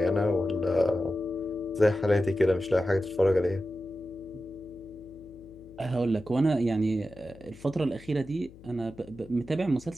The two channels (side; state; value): left; noise; hum, 21 dB below the sound